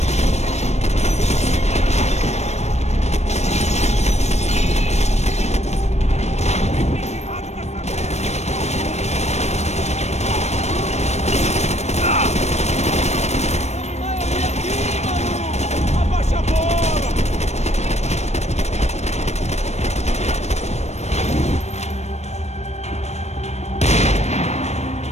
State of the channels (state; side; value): late; right; 0.32 ms